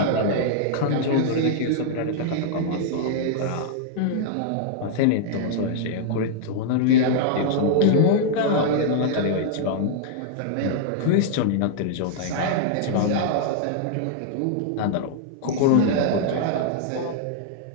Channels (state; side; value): different; both; correlation -0.01